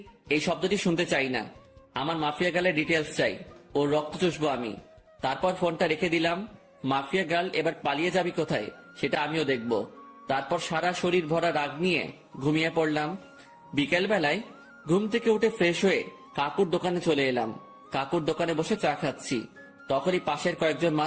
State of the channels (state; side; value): identical; both; correlation 1.00